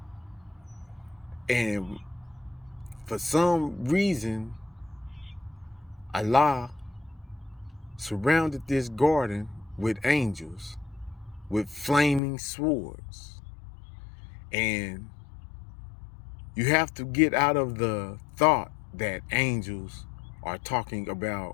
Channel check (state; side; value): drops out; right; at 12.2 s